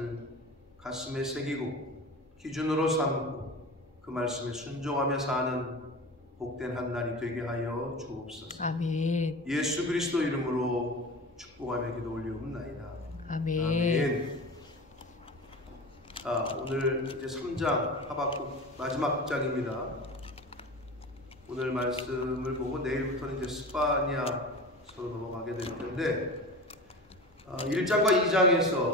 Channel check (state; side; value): normal; both; correlation 0.32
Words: 가슴에 새기고 기준으로 삼고 그 말씀에 순종하며 사는 복된 한 날이 되게 하여 주옵소서. 아멘. 예수 그리스도 이름으로 축복하며 기도 올리옵나이다. 아멘. 아멘. 오늘 이제 3장 하박국 마지막 장입니다. 오늘 말씀을 보고 내일부터는 이제 스파냐서로 넘어가게 될 텐데, 1장과